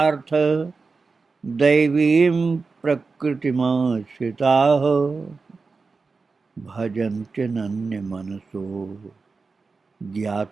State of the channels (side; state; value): left; quieter; 4.3 dB